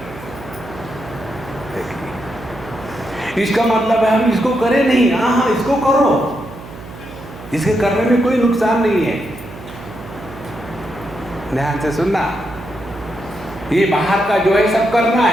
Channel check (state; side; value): noise; right; hum, 15 dB below the sound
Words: देखिए, इसका मतलब है हम इसको करें नहीं, हाँ इसको करो, इसके करने में कोई नुकसान नहीं है। ध्यान से सुनना, ये बाहर का जो है सब करना